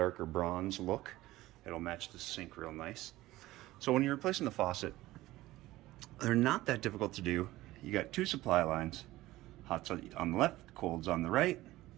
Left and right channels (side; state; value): left; quieter; 17.2 dB